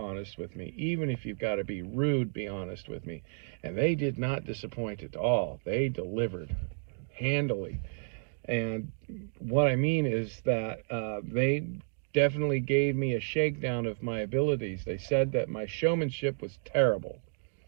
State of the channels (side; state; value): left; silent; digital silence